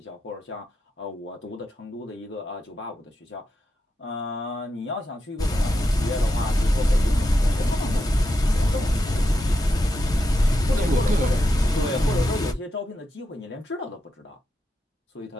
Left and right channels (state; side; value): normal; both; correlation 0.86